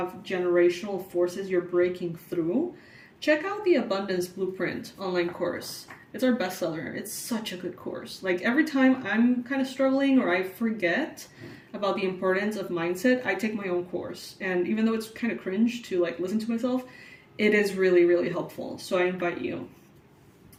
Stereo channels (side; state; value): both; identical; correlation 1.00